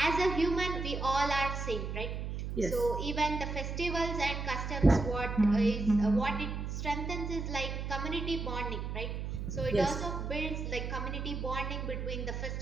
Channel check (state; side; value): noise; right; hum, 4 dB below the sound